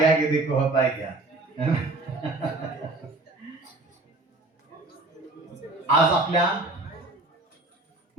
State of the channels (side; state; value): left; quieter; 3.0 dB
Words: आगे देखो होता है क्या. आज आपल्या